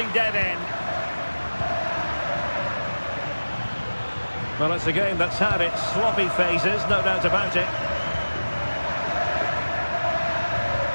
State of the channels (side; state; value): both; inverted; correlation -1.00